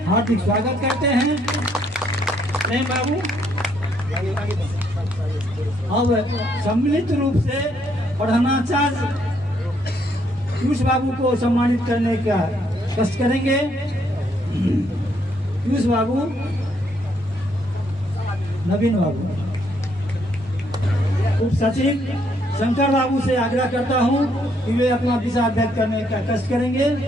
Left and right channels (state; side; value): normal; both; correlation 0.71